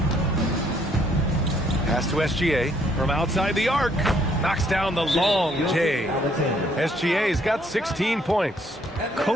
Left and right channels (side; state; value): both; normal; correlation 0.67